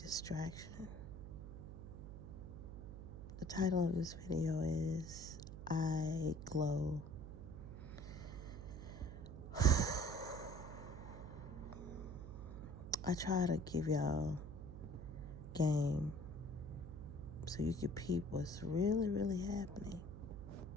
The title of this video is I Glow. I try to give y'all game so you can peep what's really happening.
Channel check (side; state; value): right; noise; hum, 10 dB below the sound